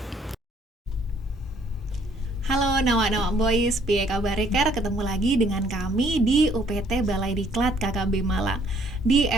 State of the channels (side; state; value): both; normal; correlation 0.63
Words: Halo Nawa-Nawa Boys, piye kabar Ker? Ketemu lagi dengan kami di UPT Balai Diklat KKB Malang. Di